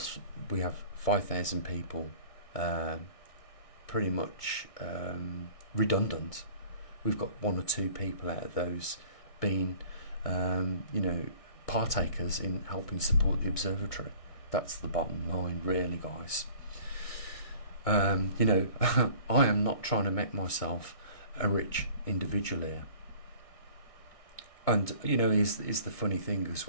we have 5,000 people pretty much redundant. We've got 1 or 2 people out of those being partakers in helping support the observatory. That's the bottom line, really, guys. I am not trying to make myself a rich individual here. And is the funny thing as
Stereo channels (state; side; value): late; right; 1.6 ms